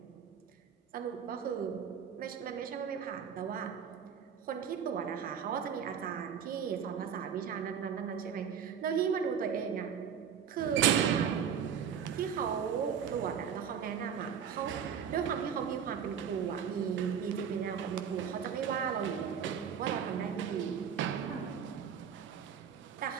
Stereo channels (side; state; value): left; quieter; 7.7 dB